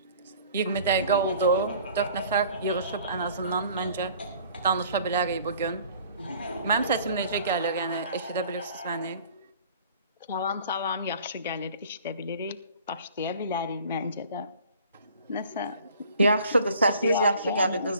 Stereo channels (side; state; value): both; inverted; correlation -0.51